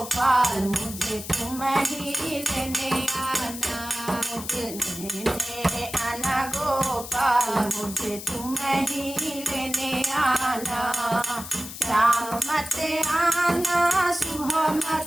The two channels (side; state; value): left; noise; hiss, 11 dB below the sound